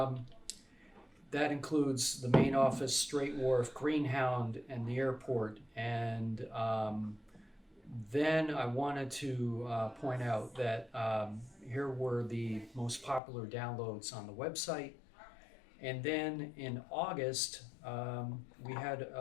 that includes the main office, Straight Wharf, Greenhound, and the airport. And then I wanted to point out that here were the most popular downloads on the website. And then in August, we had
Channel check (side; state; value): right; drops out; at 13.2 s